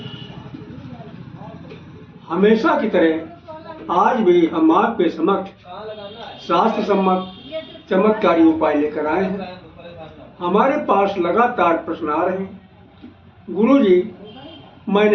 हमेशा की तरह आज भी हम आपके समक्ष शास्त्र सम्मत चमत्कारी उपाय लेकर आए हैं। हमारे पास लगातार प्रश्न आ रहे हैं। गुरुजी,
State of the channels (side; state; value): both; identical; correlation 1.00